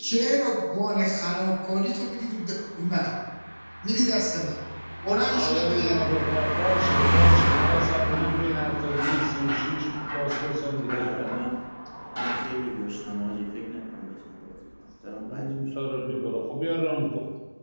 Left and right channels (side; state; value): both; inverted; correlation -1.00